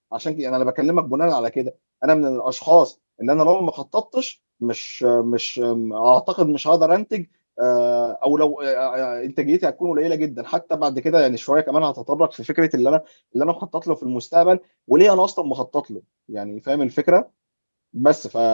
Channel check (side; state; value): both; inverted; correlation -1.00